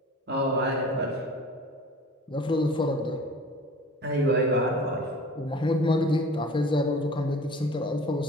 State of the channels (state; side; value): normal; both; correlation 0.43